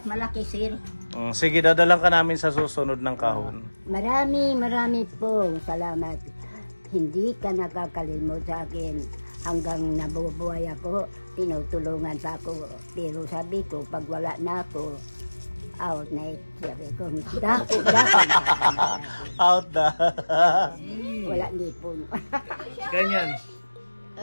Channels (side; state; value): both; inverted; correlation -1.00